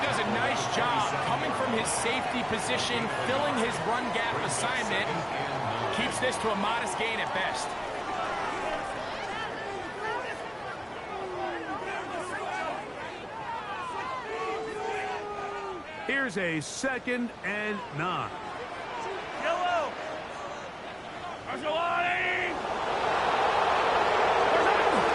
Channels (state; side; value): identical; both; correlation 1.00